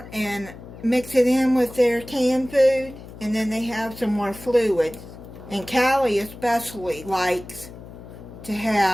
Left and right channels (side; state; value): left; noise; hum, 16 dB below the sound